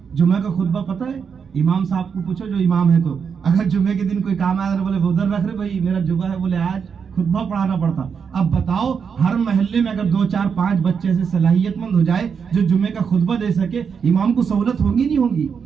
جمعہ کا خطبہ پتہ ہے؟ امام صاحب کو پوچھو جو امام ہے، تو اگر جمعے کے دن کوئی کام آیا بولے ادھر رکھ رہے بھائی میرا جمعہ ہے، بولے آج خطبہ پڑھانا پڑتا. اب بتاؤ ہر محلے میں اگر 2 4 5 بچے سے صلاحیت مند ہو جائے جو جمعے کا خطبہ دے سکے، امام کو سہولت ہوگی نہیں ہوگی؟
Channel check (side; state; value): left; quieter; 6.4 dB